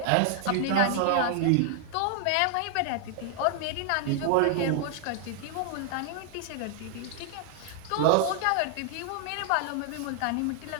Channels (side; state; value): both; different; correlation 0.00